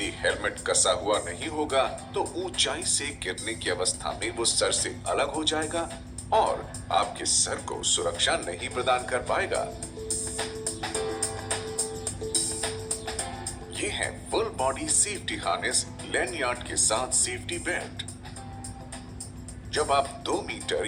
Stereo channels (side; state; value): both; identical; correlation 1.00